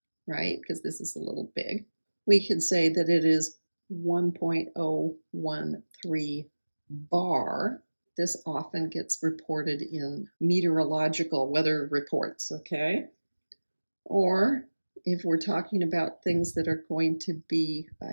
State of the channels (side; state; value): both; inverted; correlation -1.00